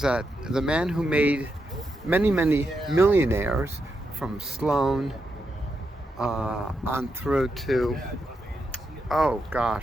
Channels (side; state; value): both; normal; correlation 0.84